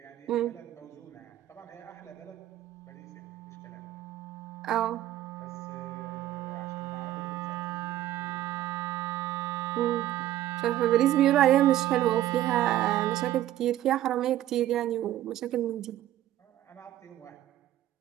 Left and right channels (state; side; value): quieter; left; 13.4 dB